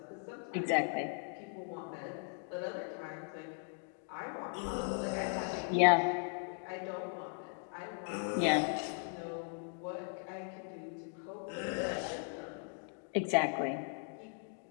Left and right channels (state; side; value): silent; right; 52 dB below the other